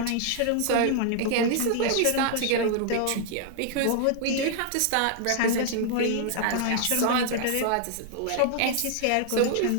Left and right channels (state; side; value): different; both; correlation 0.00